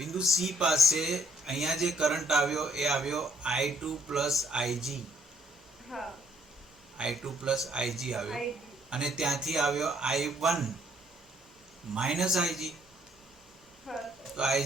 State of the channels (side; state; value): both; normal; correlation 0.66